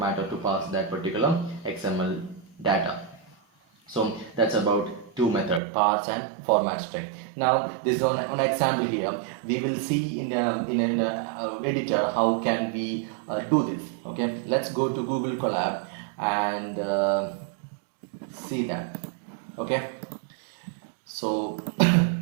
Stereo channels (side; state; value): left; drops out; at 5.6 s